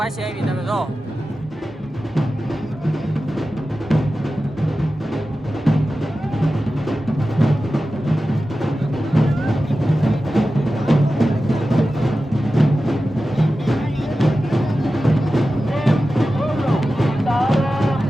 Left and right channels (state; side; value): normal; both; correlation 0.94